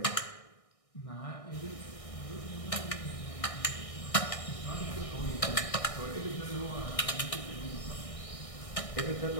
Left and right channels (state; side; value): late; right; 1.6 ms